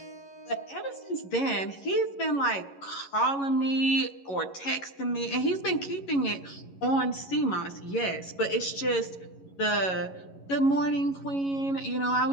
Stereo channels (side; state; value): right; late; 11 ms